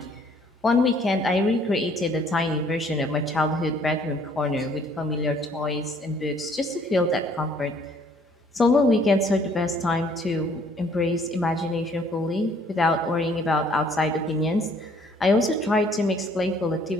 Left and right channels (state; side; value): normal; both; correlation 0.61